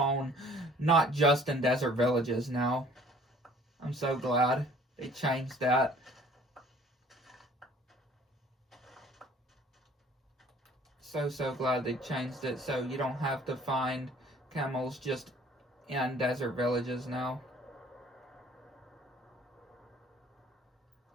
not just in desert villages now. I'm so glad they changed that. So glad they changed it so you don't have to find camels just in desert villages now.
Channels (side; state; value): both; normal; correlation 0.54